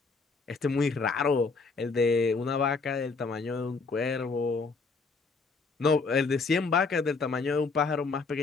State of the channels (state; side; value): quieter; right; 4.3 dB